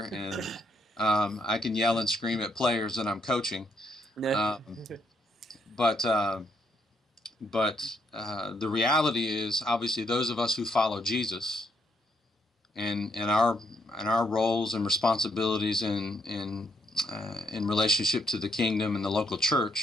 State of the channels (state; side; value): normal; both; correlation 0.74